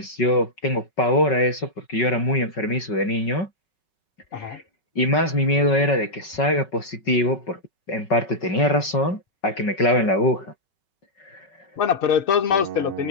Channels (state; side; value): late; right; 5.3 ms